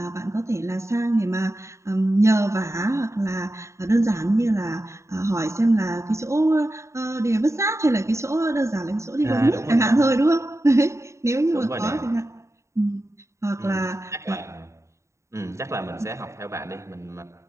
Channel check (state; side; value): late; left; 0.14 ms